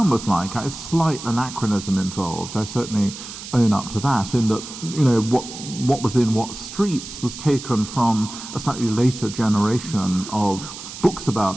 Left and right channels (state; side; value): noise; right; hiss, 12 dB below the sound